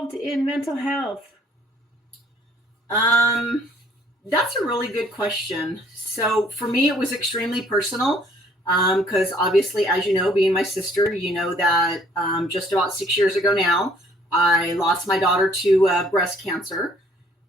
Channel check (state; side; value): normal; both; correlation 0.61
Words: in mental health? That's a really good question. So for me, it was extremely personal, because obviously, as you know, being my sister, you know that just about 6 years ago now, I lost my daughter to breast cancer.